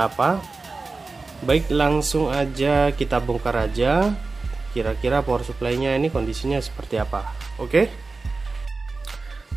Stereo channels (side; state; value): left; quieter; 3.8 dB